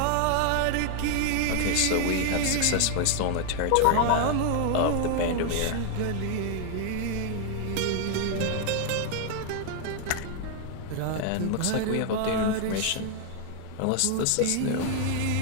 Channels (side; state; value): both; different; correlation 0.00